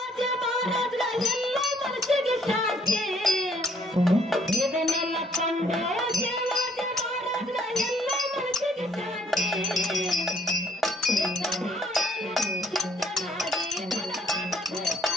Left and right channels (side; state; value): both; normal; correlation 0.63